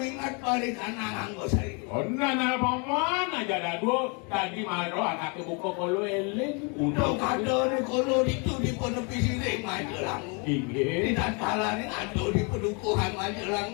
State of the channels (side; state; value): right; quieter; 34.0 dB